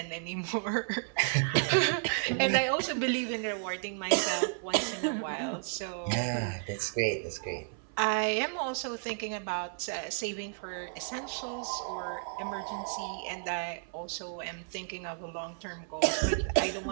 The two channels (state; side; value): silent; left; 56 dB below the other